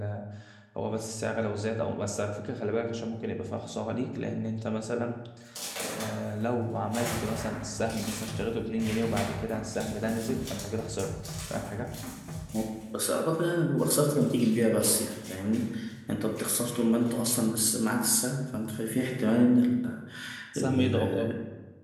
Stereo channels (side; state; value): both; identical; correlation 1.00